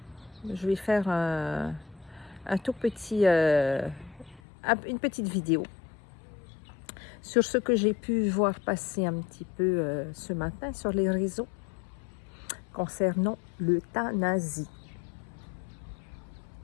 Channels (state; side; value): drops out; right; at 4.4 s